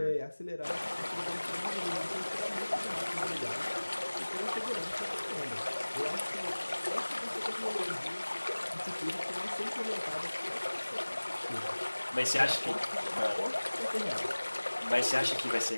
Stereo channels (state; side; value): inverted; both; correlation -1.00